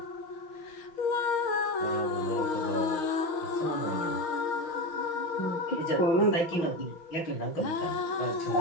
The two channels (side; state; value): right; late; 5.9 ms